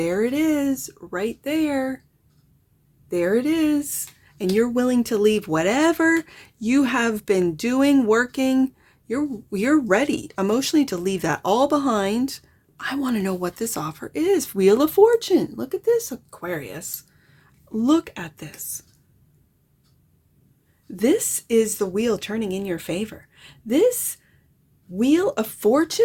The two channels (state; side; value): identical; both; correlation 1.00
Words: it is, right there. There it is. And you're willing to leave whatever you have been doing, working. You're ready emotionally to leave that all behind. I want to know what this offer is. Wheel of Fortune. Look at this, Aquarius. Look at this. This is the wheel turning in your favor. This Wheel of